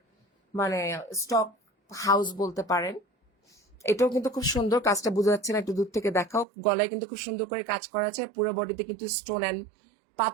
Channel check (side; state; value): left; drops out; at 6.5 s